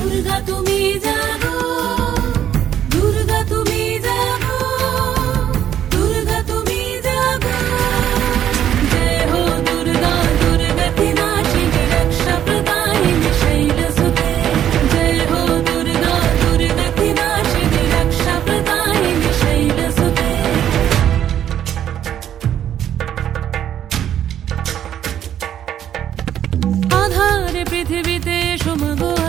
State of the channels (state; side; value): quieter; left; 10.4 dB